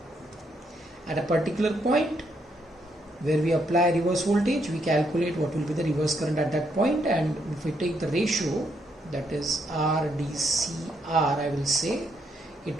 At a particular point where we apply reverse voltage, we calculate what will be the reverse current at that point, and if we take the ratio, that is RDCR, I will say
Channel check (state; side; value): normal; both; correlation 0.75